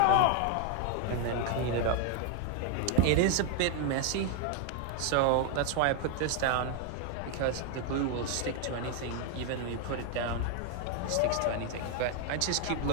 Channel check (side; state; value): both; different; correlation 0.00